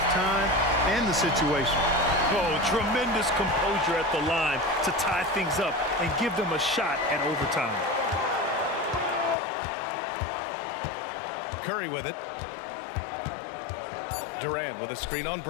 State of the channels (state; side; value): drops out; right; at 9.3 s